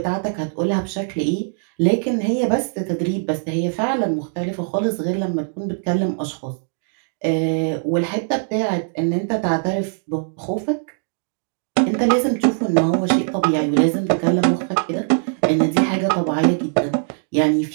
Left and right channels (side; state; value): left; silent; digital silence